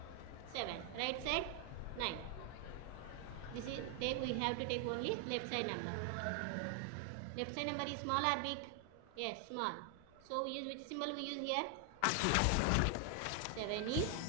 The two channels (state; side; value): different; both; correlation 0.00